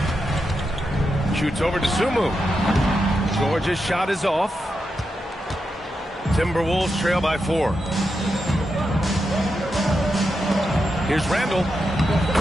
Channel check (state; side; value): normal; both; correlation 0.86